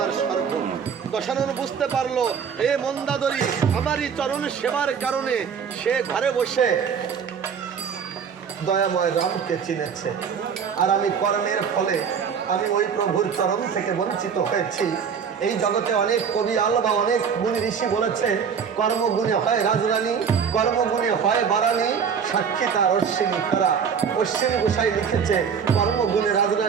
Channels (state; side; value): quieter; left; 6.8 dB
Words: স্বর্গ। দশানন বুঝতে পারলো, এ মন্দাদরি আমারই চরণ সেবার কারণে সে ঘরে বসে দয়াময় রামকে চিনেছে। আর আমি কর্মের ফলে আমি ওই প্রভুর চরণ থেকে বঞ্চিত হয়েছি। এই জগতে অনেক কবি আল বা অনেক গুণী ঋষি বলেছে, কর্মগুণে হয় রাজরানী, কর্মগুণে হয় বারানী, সাক্ষী তার অশ্বিনী খরা। অশ্বিনী গোসাই লিখেছে, কর্মগুণে